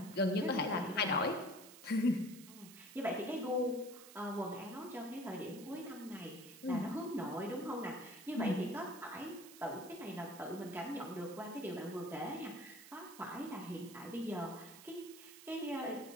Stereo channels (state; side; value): noise; right; hiss, 16 dB below the sound